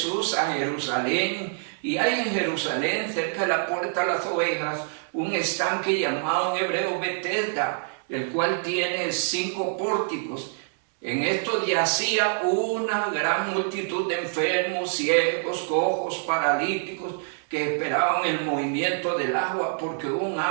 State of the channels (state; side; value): silent; left; digital silence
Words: a Jerusalén, y hay en Jerusalén, cerca de la puerta de las ovejas, un estanque llamado en hebreo Betesda, el cual tiene 5 pórticos. En esto yacía una gran multitud de enfermos, ciegos, cojos, paralíticos, que esperaban el movimiento del agua, porque un